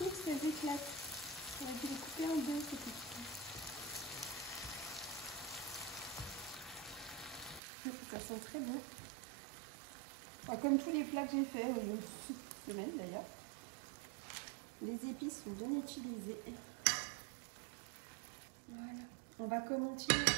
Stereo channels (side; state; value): left; drops out; at 7.6 s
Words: parce qu'elles éclatent. On a dû les couper en deux, ces petites. Ça sent très bon. Enfin, comme tous les plats que j'ai fait cette semaine d'ailleurs. Les épices sont bien utilisées. Voilà. On va continuer